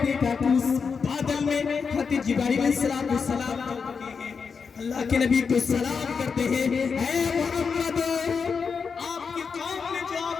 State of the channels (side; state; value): right; quieter; 5.6 dB